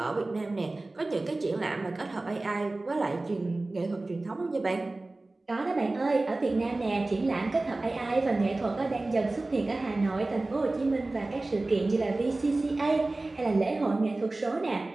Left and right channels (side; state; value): left; quieter; 3.0 dB